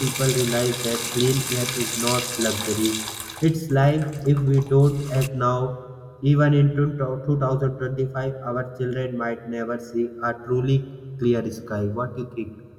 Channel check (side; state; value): both; identical; correlation 1.00